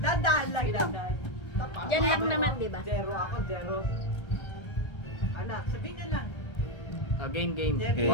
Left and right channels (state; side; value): late; right; 1.3 ms